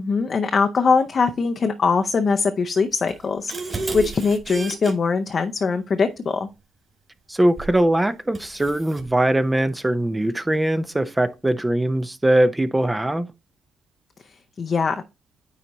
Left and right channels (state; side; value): normal; both; correlation 0.91